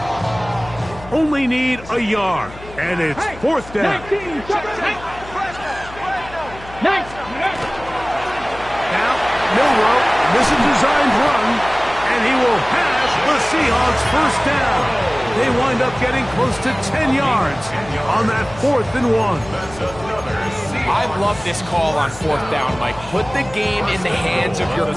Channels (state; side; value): noise; left; hum, 17 dB below the sound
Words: Only need a yard, and it's fourth down. 19, Now, Milroe, this is a designed run, and he will pass the Seahawks first down. They wind up getting close to 10 yards on that 4th and 1. I love this call on fourth down, Mike. Put the game in the hands of your